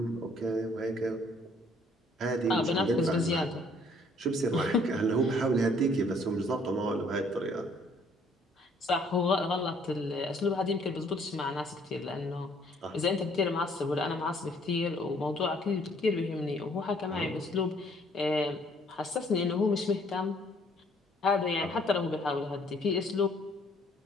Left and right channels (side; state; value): both; normal; correlation 0.62